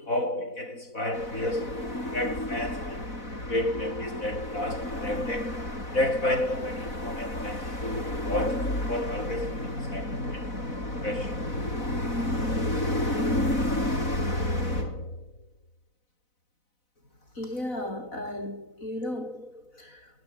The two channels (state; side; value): late; right; 4.0 ms